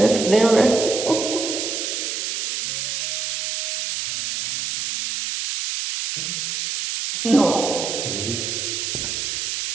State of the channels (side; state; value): right; noise; hiss, 2 dB below the sound